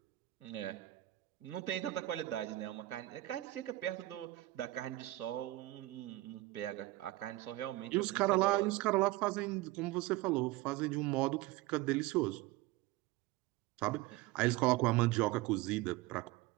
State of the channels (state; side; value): quieter; left; 18.3 dB